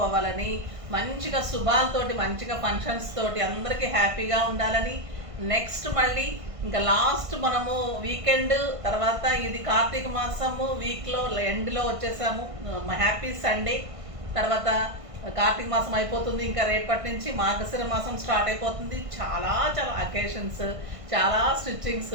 మంచిగా శుభాలతోటి, మంచిగా ఫంక్షన్స్ తోటి అందరికీ హ్యాపీగా ఉండాలని. నెక్స్ట్ మళ్ళీ ఇంకా లాస్ట్ మనము వీకెండ్ తర్వాత ఇది కార్తీక మాసము వీక్లో ఎండ్లో వచ్చేసాము. Happy Sunday. తర్వాత కార్తీక మాసం అయిపోతుంది. ఇంకా రేపటి నుంచి మార్గశిర మాసం స్టార్ట్ అయిపోతుంది. చాలా చాలా అకేషన్స్, చాలా స్టిచ్చింగ్స్,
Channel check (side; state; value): left; late; 1.5 ms